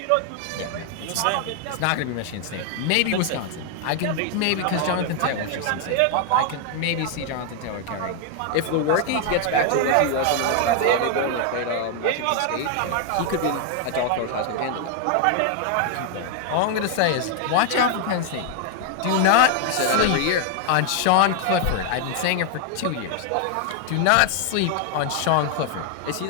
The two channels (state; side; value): different; both; correlation 0.00